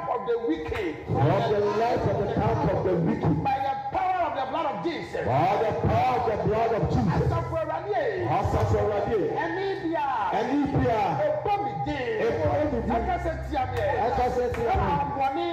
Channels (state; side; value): identical; both; correlation 1.00